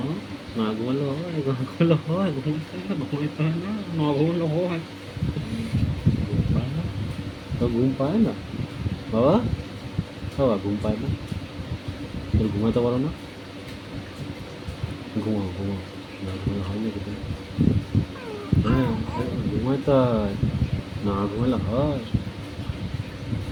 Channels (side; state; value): both; identical; correlation 1.00